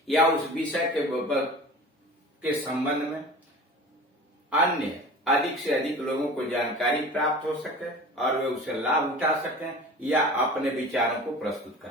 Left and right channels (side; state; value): both; normal; correlation 0.39